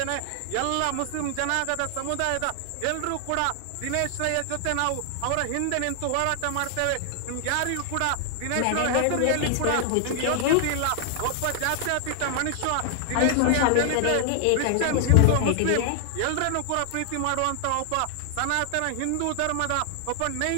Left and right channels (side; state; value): both; different; correlation 0.00